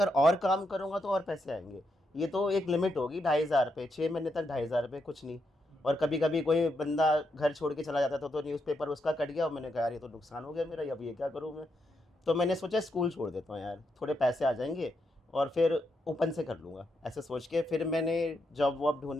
और काम करूँगा तो और पैसे आएंगे। ये तो एक लिमिट होगी 2,500 रुपये, 6 महीने तक 2,500 रुपये कुछ नहीं। और कभी कभी कोई बंदा घर छोड़ के चला जाता था तो न्यूज़पेपर उसका कट गया, और मैंने कहा यार ये तो नुकसान हो गया मेरा, अब ये क्या करूँ मैं। तो मैंने सोचा स्कूल छोड़ देता हूँ यार, थोड़े पैसे आ जाएंगे और फिर ओपन से कर लूँगा, ऐसे सोच के। फिर मैंने जॉब वॉब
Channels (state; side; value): normal; both; correlation 0.81